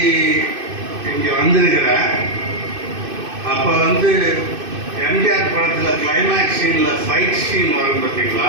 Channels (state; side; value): late; left; 2.6 ms